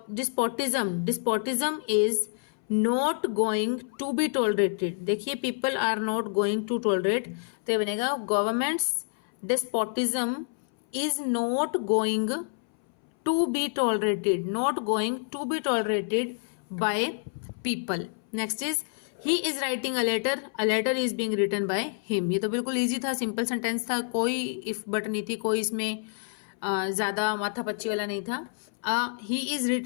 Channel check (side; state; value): right; silent; 59 dB below the other